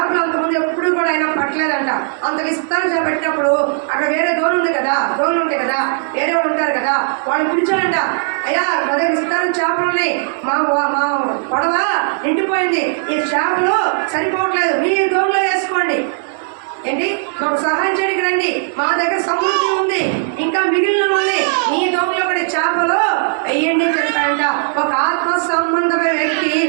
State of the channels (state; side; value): silent; left; digital silence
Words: అంతకుముందు ఎప్పుడు కూడా ఆయన పట్టలేదంట. అంత విస్తార చేప పెట్టినప్పుడు అక్కడ వేరే దోణులు ఉంటాయి కదా, వేరే వాళ్ళు ఉంటారు కదా, వాళ్ళు పిలిచాడంట, అయ్యా మన విస్తారం చేపలు ఉన్నాయి, మా పడవ నిండిపోయింది, ఈ చేపలు సరిపోవట్లేదు, మీ దోణులు వేసుకోండి, ఏంటి మాకు సహాయం చేయడానికి రండి, మా దగ్గర సమృద్ధి ఉంది, ఇంకా మిగిలిన ఉంది, మీ దోమలో ఒకటి చేపలు వెయ్యండి చెప్పాడంట. ఒక ఆత్మ సంబంధమైన వ్యక్తి